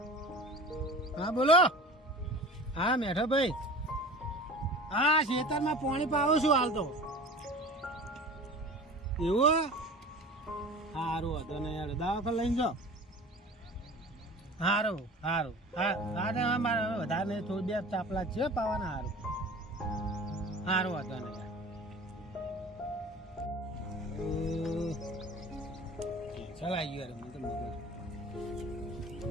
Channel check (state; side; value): normal; both; correlation 0.39